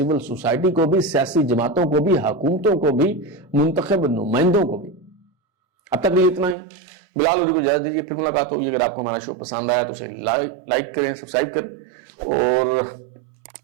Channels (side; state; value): left; drops out; at 6.6 s